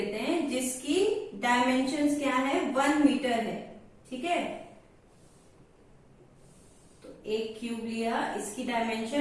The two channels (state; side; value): identical; both; correlation 1.00